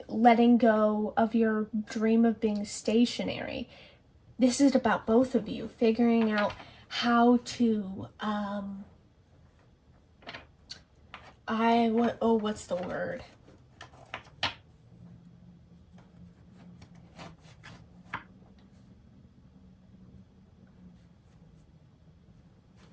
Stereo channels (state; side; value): identical; both; correlation 1.00